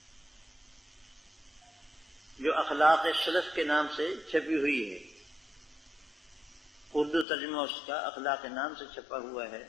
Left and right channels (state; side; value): drops out; right; at 7.2 s